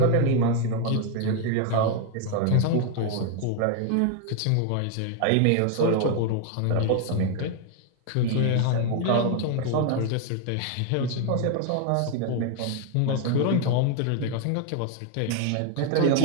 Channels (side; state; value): both; different; correlation 0.00